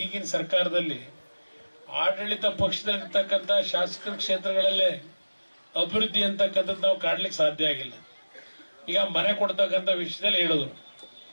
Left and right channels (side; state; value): both; inverted; correlation -1.00